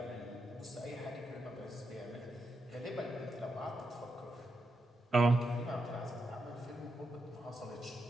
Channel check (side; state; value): both; normal; correlation 0.84